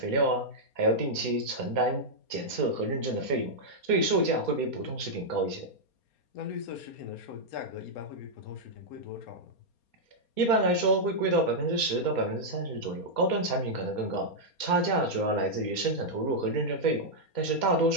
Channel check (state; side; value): late; right; 4.3 ms